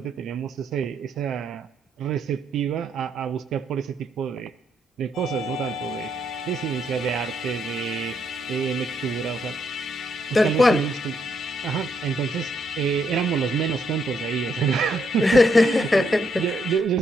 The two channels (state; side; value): normal; both; correlation 0.75